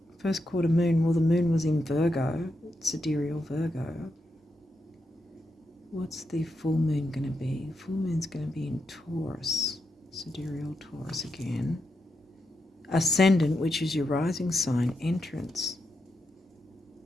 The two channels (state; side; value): normal; both; correlation 0.85